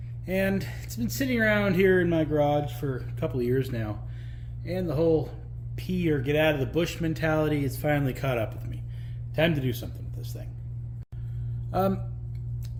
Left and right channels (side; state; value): both; identical; correlation 1.00